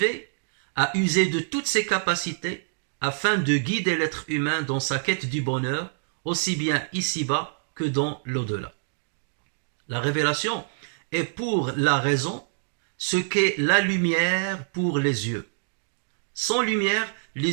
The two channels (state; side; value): silent; left; digital silence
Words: à user de toutes ses capacités afin de guider l'être humain dans sa quête du bonheur, aussi bien ici-bas que dans l'au-delà. La révélation est pour la raison ce qu'est la lumière pour les yeux. Sans lumière,